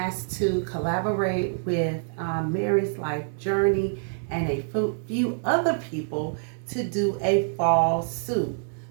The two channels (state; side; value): silent; left; digital silence